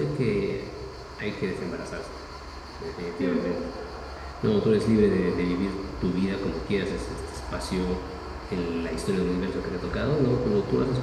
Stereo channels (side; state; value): both; identical; correlation 1.00